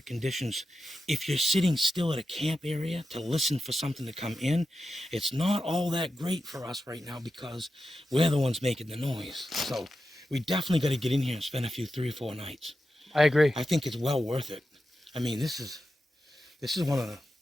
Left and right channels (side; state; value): both; normal; correlation 0.90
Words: conditions. If you're sitting still at a camp area to listen for something to come in, it's not all that great for us right now because we're the ones making the noise. So we definitely got to get in here and spend a few 3 or 4 nights. I agree. I think it's well worth it. I mean, this is one of